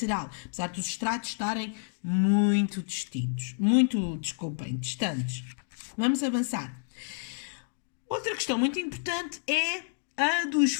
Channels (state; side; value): silent; right; digital silence